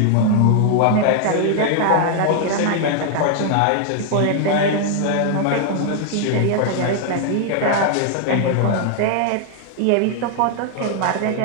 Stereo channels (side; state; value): both; different; correlation 0.00